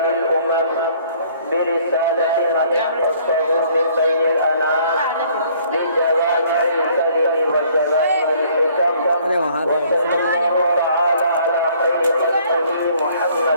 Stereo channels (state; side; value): inverted; both; correlation -0.60